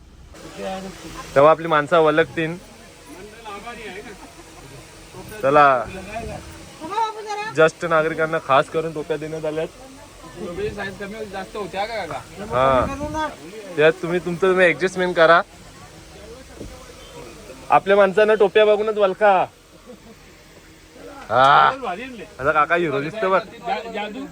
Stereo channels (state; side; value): identical; both; correlation 1.00